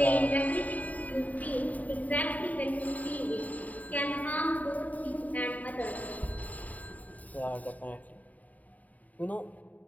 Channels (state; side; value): late; right; 0.074 ms